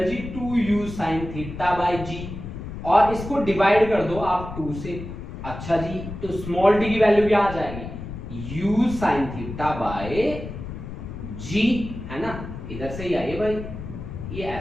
जी 2u sin theta by g, और इसको डिवाइड कर दो आप 2 से, अच्छा जी, तो स्मॉल t की वैल्यू क्या आ जाएगी, u sin theta by g, है ना, इधर से ही आइए भाई, ये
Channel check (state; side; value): noise; left; rumble, 9 dB below the sound